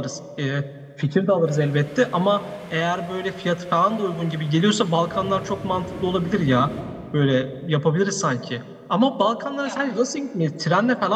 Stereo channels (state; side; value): identical; both; correlation 1.00